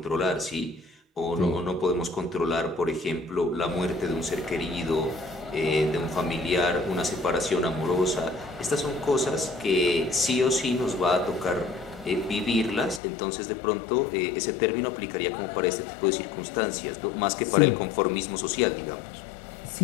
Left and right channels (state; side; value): drops out; right; at 13.0 s